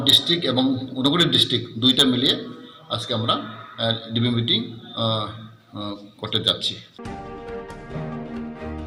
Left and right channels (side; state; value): both; identical; correlation 1.00